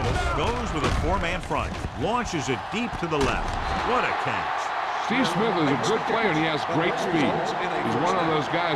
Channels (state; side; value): identical; both; correlation 1.00